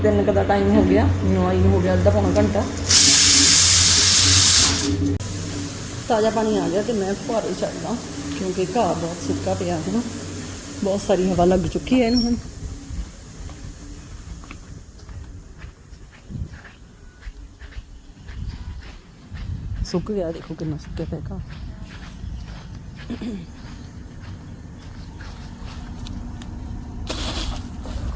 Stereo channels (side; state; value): both; identical; correlation 1.00